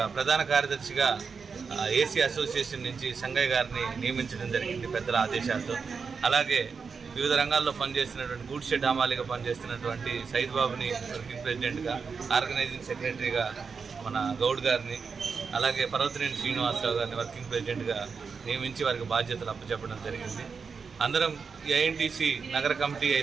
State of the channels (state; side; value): quieter; left; 5.4 dB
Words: ప్రధాన కార్యదర్శిగా ఏసీ అసోసియేషన్ నుంచి సంగయ్య గారిని నియమించడం జరిగింది పెద్దల ఆదేశాలతో. అలాగే వివిధ రంగాల్లో పనిచేస్తున్నటువంటి గూడ్ షెడ్ హమాలీగా పనిచేస్తున్నటువంటి సైద్ బాబుని వర్కింగ్ ప్రెసిడెంట్గా, ఆర్గనైజింగ్ సెక్రటరీగా మన గౌడ్ గారిని, అలాగే పర్వతనేని శ్రీనివాసరావు గారిని వర్కింగ్ ప్రెసిడెంట్గా నియమించి వారికి బాధ్యతలు అప్పచెప్పడం జరిగింది. అందరం ఈ ఐఎన్టీసీ నగర కమిటీ